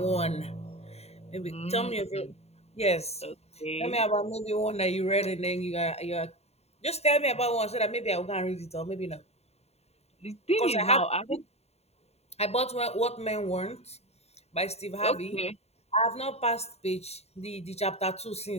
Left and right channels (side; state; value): right; late; 0.30 ms